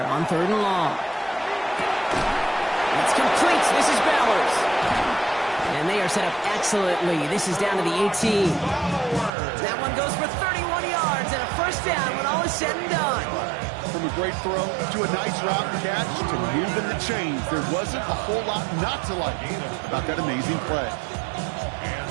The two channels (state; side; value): drops out; left; at 9.3 s